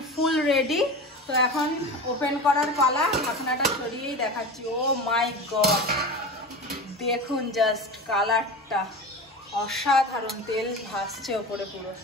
ফুল রেডি। তো এখন ওপেন করার পালা, ঢাকনাটা সরিয়েই দেখাচ্ছি। ও মাই গড, দেখুন জাস্ট কালারটা অসাধারণ, তেল ভাসছে ওপরে পুরো।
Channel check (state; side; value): normal; both; correlation 0.29